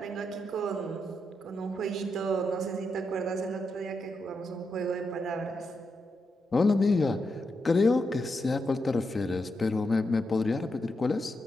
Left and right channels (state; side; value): normal; both; correlation 0.84